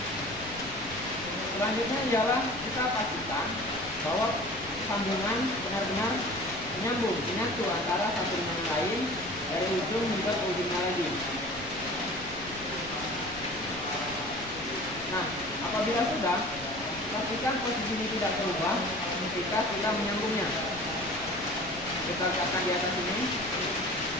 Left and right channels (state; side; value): noise; left; rumble, 16 dB below the sound